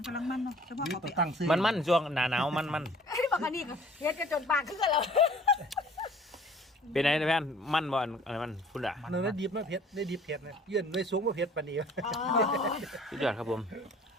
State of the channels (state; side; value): normal; both; correlation 0.51